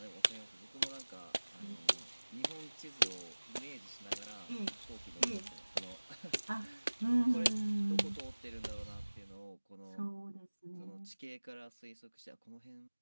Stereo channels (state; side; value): inverted; both; correlation -1.00